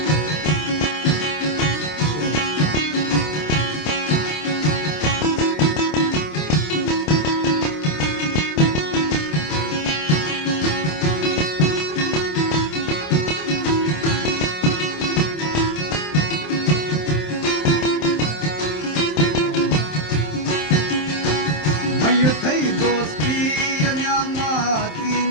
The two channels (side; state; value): right; late; 27 ms